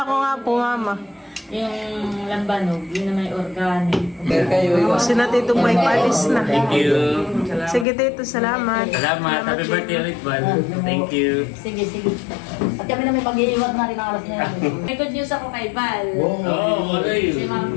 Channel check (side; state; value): right; drops out; at 7.9 s